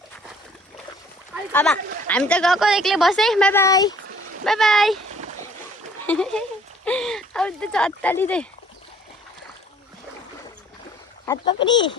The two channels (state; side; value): normal; both; correlation 0.56